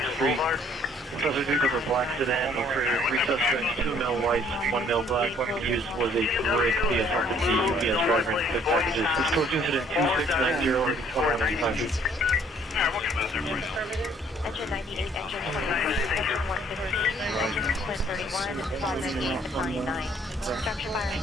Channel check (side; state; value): both; normal; correlation 0.61